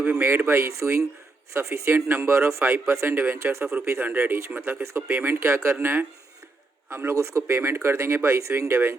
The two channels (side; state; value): left; quieter; 3.4 dB